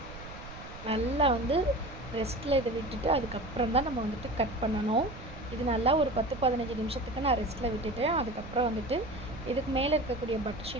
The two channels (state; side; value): noise; right; rumble, 14 dB below the sound